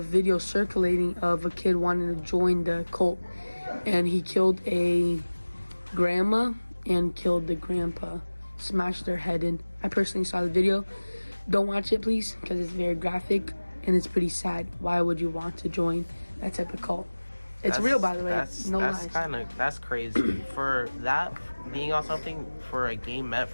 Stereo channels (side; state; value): both; inverted; correlation -1.00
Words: video circulating of a kid wanting to join the cult, and he killed a grandma and killed the grandpa, smashed their head in. I personally saw the video. Don't watch it, please, because it's very graphic and it's pretty sad. Why would you want to join that type of cult? It's real, by the way. That's crazy. For that being on something, for a game meant